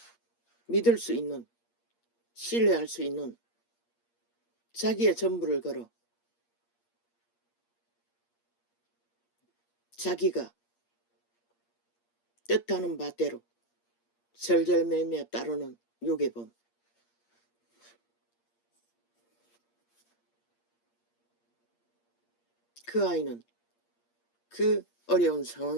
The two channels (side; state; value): right; late; 8.6 ms